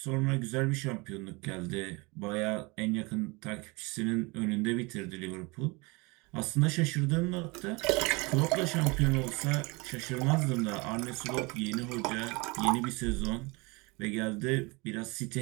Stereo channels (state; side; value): quieter; left; 26.6 dB